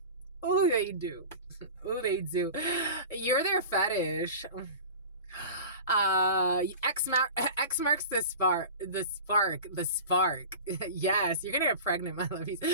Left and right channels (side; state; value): both; inverted; correlation -0.35